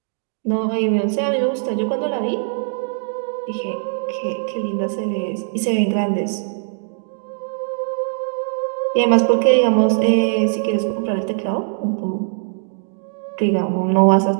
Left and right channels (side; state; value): left; silent; digital silence